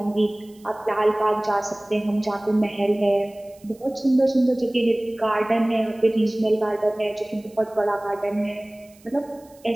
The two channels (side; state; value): right; noise; hiss, 28 dB below the sound